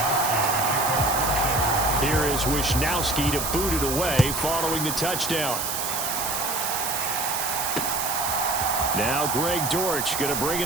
Here is Wisnowski to boot it away following the touchdown. Now Greg Dortch going to bring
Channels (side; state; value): right; noise; hiss, 2 dB below the sound